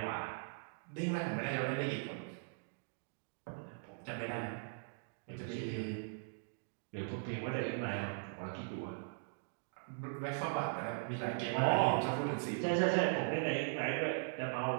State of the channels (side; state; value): left; silent; digital silence